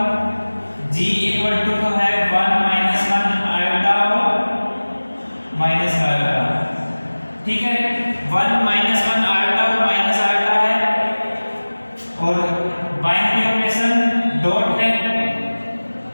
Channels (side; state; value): both; inverted; correlation -1.00